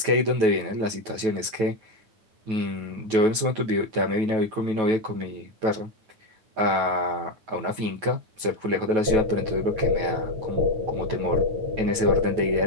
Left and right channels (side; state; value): left; late; 9.3 ms